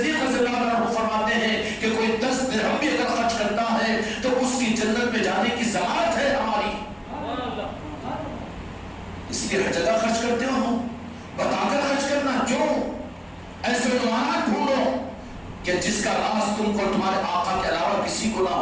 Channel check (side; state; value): both; identical; correlation 1.00